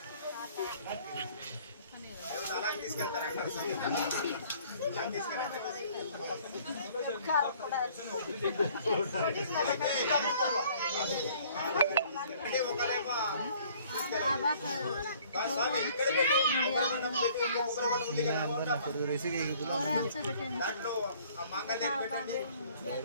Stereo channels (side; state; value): both; inverted; correlation -0.56